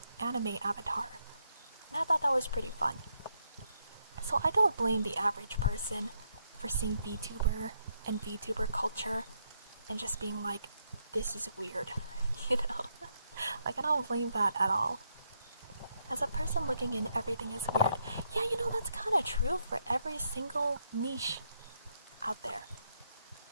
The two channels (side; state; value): both; inverted; correlation -0.78